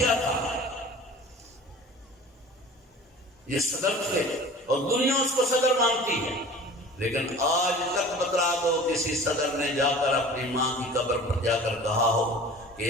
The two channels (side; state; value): both; normal; correlation 0.42